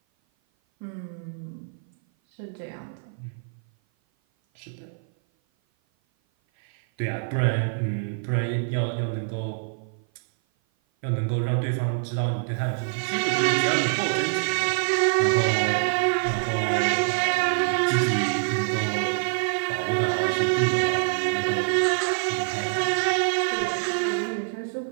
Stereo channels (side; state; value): left; silent; 56 dB below the other